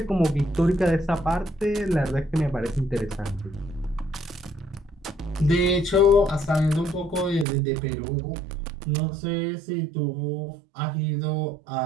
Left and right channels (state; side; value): drops out; left; at 7.5 s